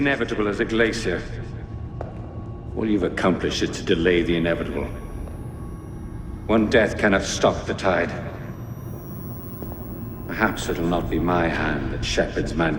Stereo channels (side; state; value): both; identical; correlation 1.00